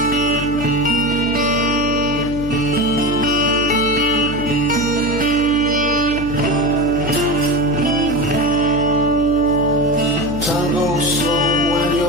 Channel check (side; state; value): left; noise; hum, 9 dB below the sound